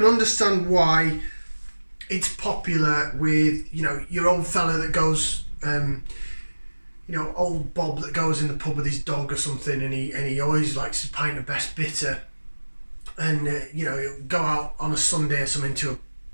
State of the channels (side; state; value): both; inverted; correlation -1.00